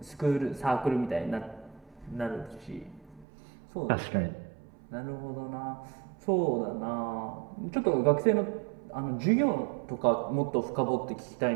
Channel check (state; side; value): drops out; left; at 3.2 s